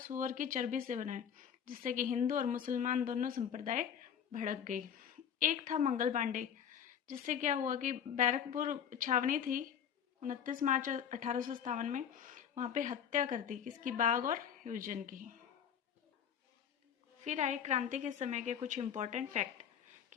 की चर्बी से बना है, जिससे कि हिंदू और मुसलमान दोनों संप्रदाय भड़क गई। एक था मंगल पांडे, जिससे क्या हुआ कि बैरकपुर छावनी थी 29 मार्च 1857 में, वहाँ पे हत्या कर दी किसकी, बाघ और ह्यूजन की। फिर आए क्रांति के समय के कुछ इम्पोर्टेंट फैक्ट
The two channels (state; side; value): quieter; right; 8.5 dB